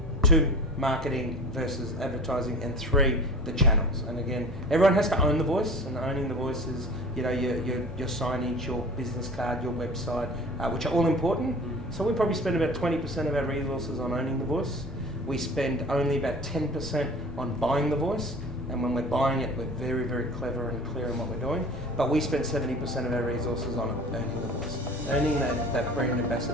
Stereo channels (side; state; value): both; normal; correlation 0.40